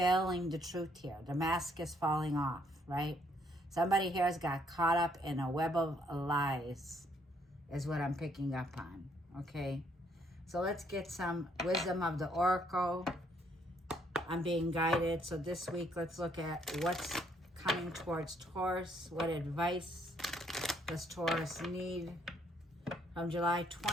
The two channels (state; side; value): normal; both; correlation 0.69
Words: the truth here. The mask is falling off, right? Somebody here has got caught up in a web of lies is what I'm picking up on, okay? So let's get some wisdom of the oracle. I'm being guided. So this week, let's look at what's coming towards Taurus. What advice does Taurus need from July